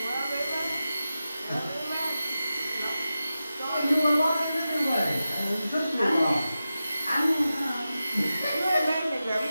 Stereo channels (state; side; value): inverted; both; correlation -0.93